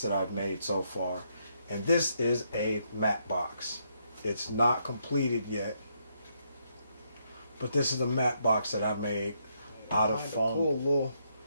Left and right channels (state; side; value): inverted; both; correlation -0.76